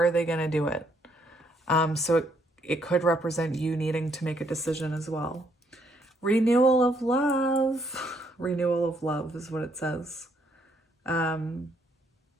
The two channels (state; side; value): normal; both; correlation 0.71